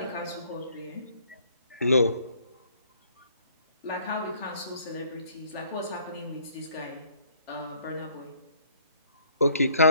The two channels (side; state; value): both; inverted; correlation -0.63